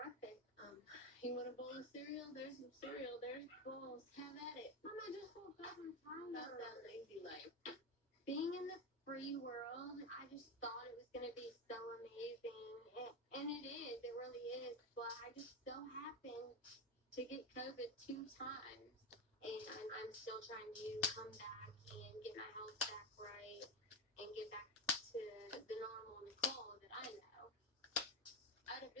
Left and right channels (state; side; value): normal; both; correlation 0.13